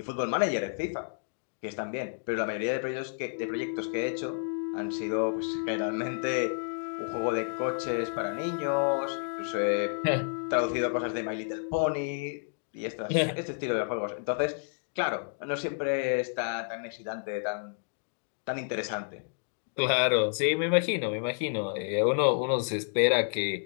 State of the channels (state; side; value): silent; right; digital silence